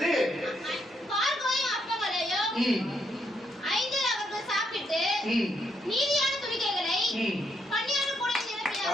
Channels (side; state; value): both; normal; correlation 0.76